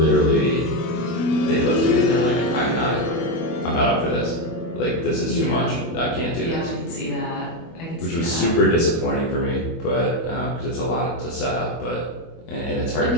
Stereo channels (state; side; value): late; right; 24 ms